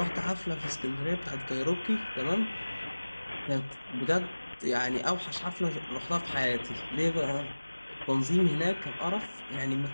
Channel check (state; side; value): inverted; both; correlation -1.00